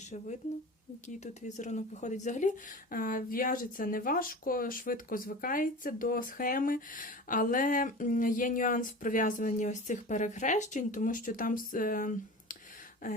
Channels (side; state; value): both; normal; correlation 0.34